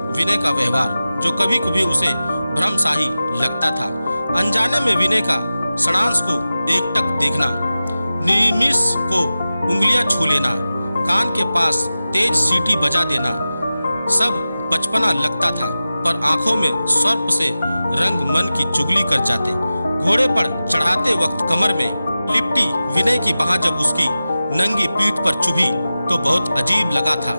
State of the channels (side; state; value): both; inverted; correlation -0.95